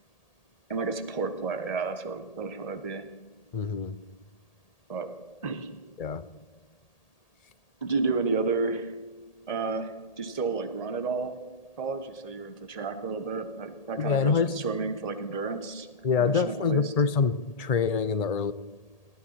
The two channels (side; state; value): right; late; 1.8 ms